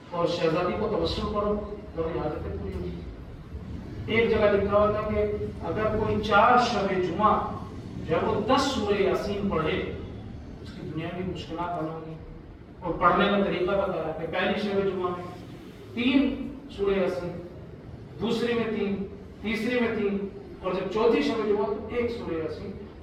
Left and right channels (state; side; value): identical; both; correlation 1.00